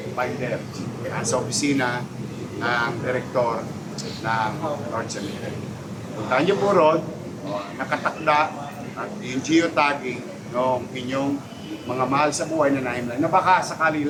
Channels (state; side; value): identical; both; correlation 1.00